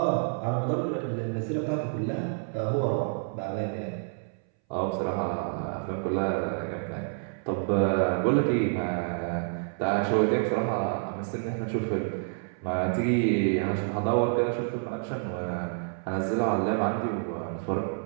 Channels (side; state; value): left; silent; 59 dB below the other